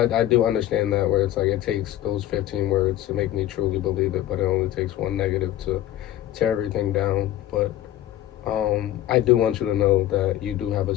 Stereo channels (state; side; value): quieter; right; 13.4 dB